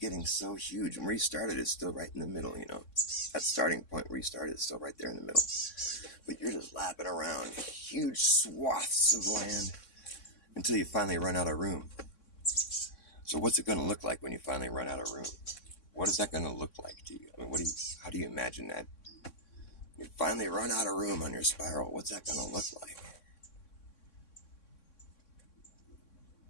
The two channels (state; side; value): late; right; 3.6 ms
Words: getting so huge. And where you started is still right in the middle, you know. That starting point where you started is still right there in the middle. But you're just lapping around huge swaths of land until you finally run out of room. So what's it going to look like when you finally run out of room? What is that going to look like to you? I mean, how do you imagine that? You finally run out of room on your spiral. What's that going to look like?